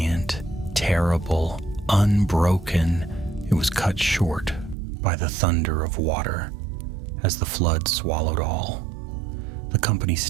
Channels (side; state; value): left; drops out; at 4.8 s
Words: terrible, unbroken. It was cut short by the thunder of water, as the flood swallowed all. The company